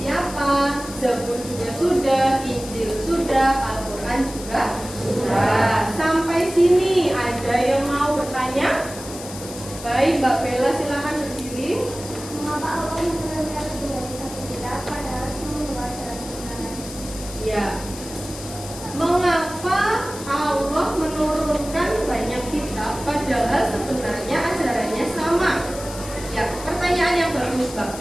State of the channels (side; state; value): left; noise; hiss, 13 dB below the sound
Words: siapa, Zabur juga sudah, Injil sudah, Al-Quran juga sudah. Sampai sini ada yang mau bertanya? Baik, Mbak Bella silahkan berdiri. Mengapa Allah menurunkan lebih dari satu kitab padahal semua adalah kebenaran? Ya. Mengapa Allah menurunkan banyak kitab padahal sebenarnya ajarannya sama? Ya, pertanyaan yang bagus Mbak